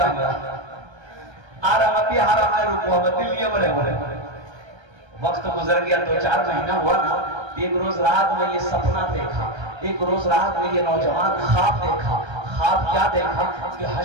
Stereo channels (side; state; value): left; late; 1.3 ms